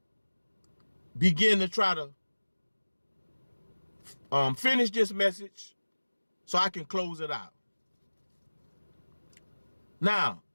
begin to try to finish this message so I can close it out. Now,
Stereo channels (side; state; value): both; inverted; correlation -1.00